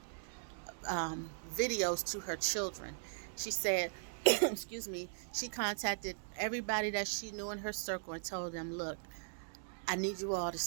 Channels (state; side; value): silent; left; digital silence